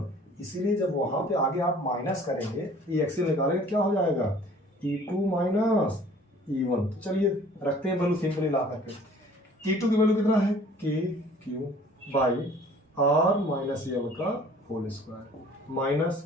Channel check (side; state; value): both; normal; correlation 0.51